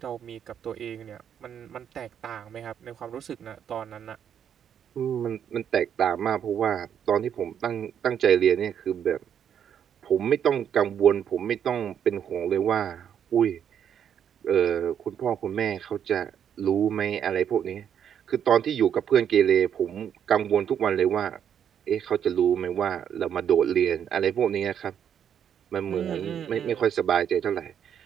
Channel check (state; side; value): quieter; left; 8.8 dB